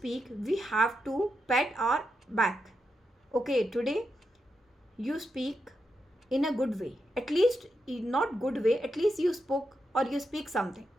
we have to pat our back. Okay, today you speak in a good way. At least, not good way, at least you spoke, or you speak something,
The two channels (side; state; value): both; normal; correlation 0.86